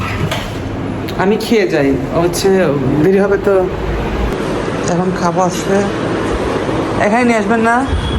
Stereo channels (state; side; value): identical; both; correlation 1.00